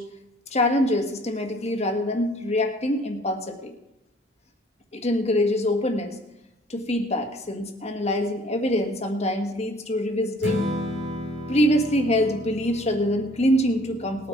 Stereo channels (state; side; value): normal; both; correlation 0.56